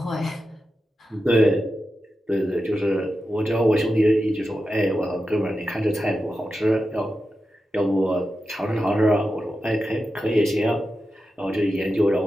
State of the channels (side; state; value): both; normal; correlation 0.91